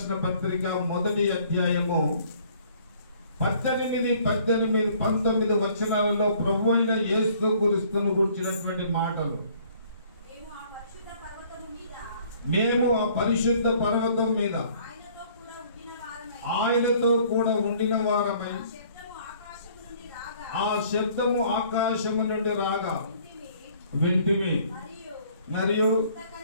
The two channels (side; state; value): both; inverted; correlation -0.58